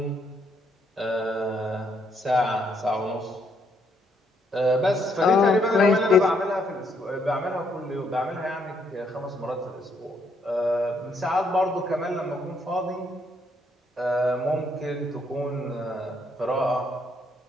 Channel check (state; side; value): normal; both; correlation 0.72